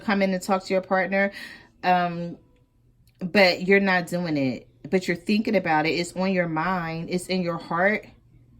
in and talk to your partner, but you're not doing it. But you're thinking about it. It's on your mind. It's in your heart.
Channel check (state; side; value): identical; both; correlation 1.00